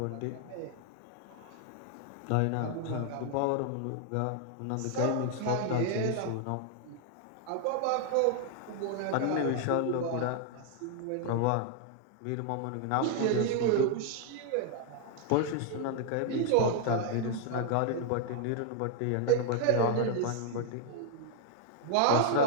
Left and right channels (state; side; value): different; both; correlation 0.00